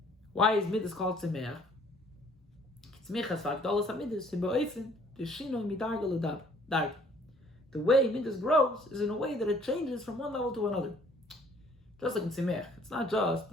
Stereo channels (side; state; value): both; normal; correlation 0.59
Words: Why is midas called tzemeach? The way midas grows is in a way that it changes from one level to another. Just like in Simech, it's not just